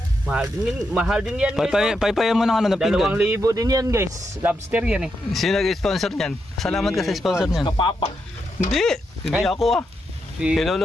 Mahal din yan, guys. Paypayan mo ng ano na pinggan. 2,000 din yan, guys. Lobster yan eh. Sino nag-sponsor niyan? Salamat ka sa sponsor niyan. Kapapa. Hindi ako ah.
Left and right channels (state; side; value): normal; both; correlation 0.83